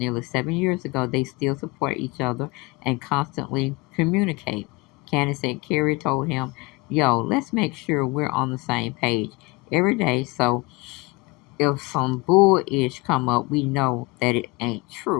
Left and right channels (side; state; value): right; quieter; 24.6 dB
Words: 7 years ago, they still support each other and constantly communicate. Cannon said Carey told him, yo, let's make sure we're on the same page every day, so if some bull-ish come up, we know that it ain't